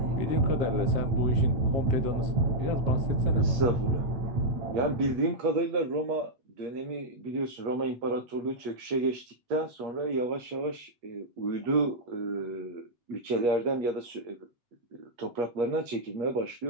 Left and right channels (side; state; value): left; late; 8.4 ms